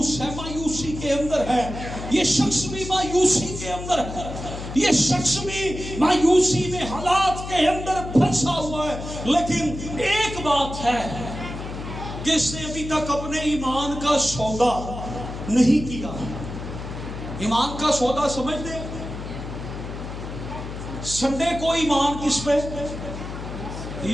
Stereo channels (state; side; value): noise; left; hum, 9 dB below the sound